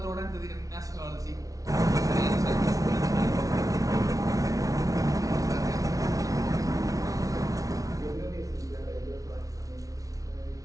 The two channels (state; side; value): late; left; 0.17 ms